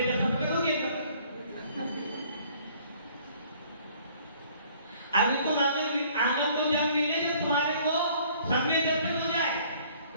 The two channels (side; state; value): both; inverted; correlation -0.57